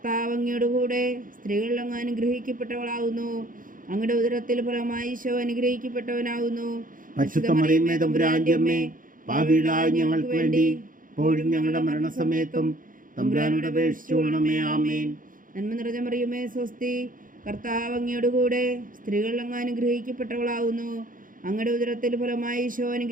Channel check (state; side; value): late; left; 0.39 ms